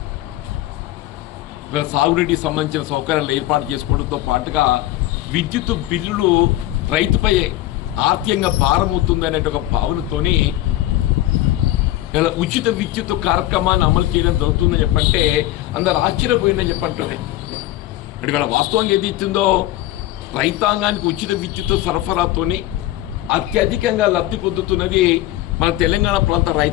సాగునీటికి సంబంధించిన సౌకర్యాలు ఏర్పాటు చేసుకోవడంతో పాటుగా విద్యుత్ బిల్లులు రైతుపై ఆర్థికంగా భారమవుతుందనే ఒక భావనతోని ఇలా ఉచిత విద్యుత్ కార్యక్రమాన్ని అమలు చేయడం జరుగుతుందని చెప్పంటే అందరు ఆశ్చర్యపోయిందని చెప్పంటుంది. అంటే వీళ్ళ వాస్తవంగా ఏది ఇచ్చిందో రైతాంగానికి ఉచిత విద్యుత్ సరఫరాతోని అత్యధికంగా లబ్ధి పొందుతున్నది మన తెలంగాణ ప్రాంత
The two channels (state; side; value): quieter; right; 15.2 dB